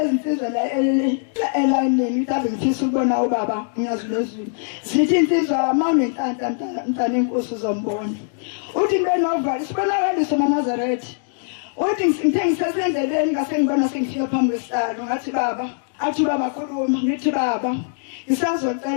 insizwa la elayinini mhlawumbe ngifisa ukubona ubaba ngiyazulezulu zithi insizwa mawunenhlanhla mntana inkosi uzombona uthi ngibenovalo sibonakaliso eNazaretha uthi ngithe ngisesendleleni ngase ngibona sengifika phambi kwesihlalo ngathi baba athi baba khuluma ngithi baba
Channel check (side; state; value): right; silent; digital silence